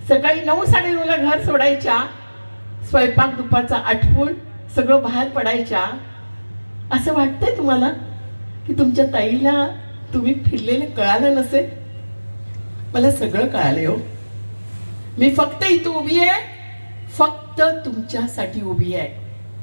सकाळी 9-9:30ला घर सोडायच्या, स्वयंपाक दुपारचा आटपून सगळं बाहेर पडायच्या. असं वाटतंय तुम्हाला की तुमच्या ताईला तुम्ही फिरलेलं कळालं नसेल? मला सगळं कळालं हो. मी फक्त इथं उभी आहे, फक्त तुमच्यासाठी उभी आहे.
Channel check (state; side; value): inverted; both; correlation -1.00